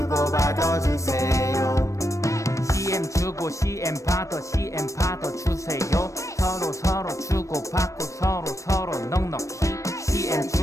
주세요. CM 주고 CM 받아 주세요. 서로 주고받고 서로 넉넉히 CM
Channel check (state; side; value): late; right; 0.15 ms